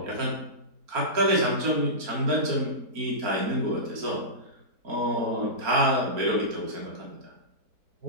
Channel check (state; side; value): late; left; 4.3 ms